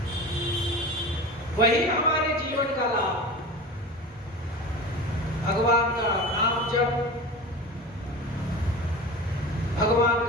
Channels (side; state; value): both; normal; correlation 0.32